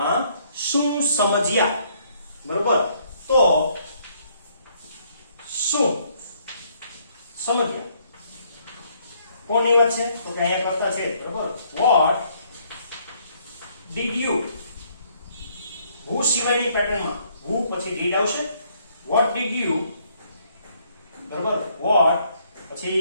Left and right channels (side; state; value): both; inverted; correlation -0.67